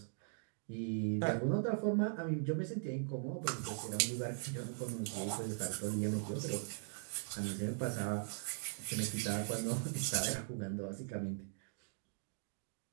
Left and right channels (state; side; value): silent; left; digital silence